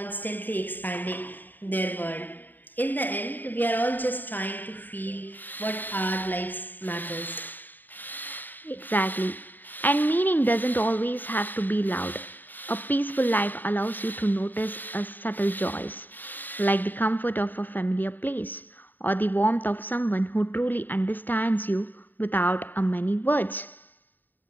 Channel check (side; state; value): right; late; 0.089 ms